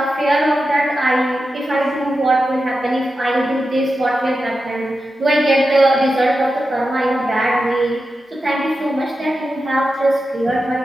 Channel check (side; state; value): both; normal; correlation 0.91